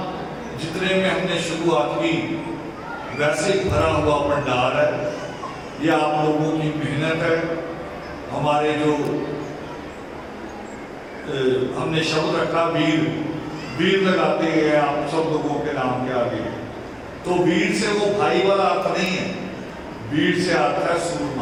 जितने में हमने शुरुआत की वैसे भरा हुआ पंडाल है, ये आप लोगों की मेहनत है। हमारे जो हमने शब्द रखा वीर, वीर लगाते हैं आप सब लोगों के नाम के आगे, तो वीर से वो भाई वाला अर्थ नहीं है, वीर से आता है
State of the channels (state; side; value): identical; both; correlation 1.00